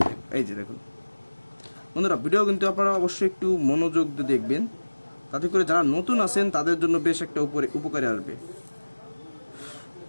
এই যে দেখুন বন্ধুরা, ভিডিও কিন্তু আপনারা অবশ্যই একটু মনোযোগ দিয়ে দেখবেন, তাতে করে যারা নতুন আছেন তাদের জন্য বেশ একটা উপকারে আসবে।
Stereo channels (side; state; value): both; inverted; correlation -1.00